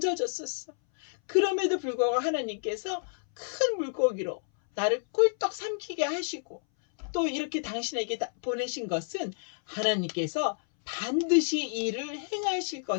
그럼에도 불구하고 하나님께서 큰 물고기로 나를 꿀떡 삼키게 하시고 또 이렇게 당신에게 보내신 것은 하나님께서 반드시 일을 행하실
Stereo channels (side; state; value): right; silent; 58 dB below the other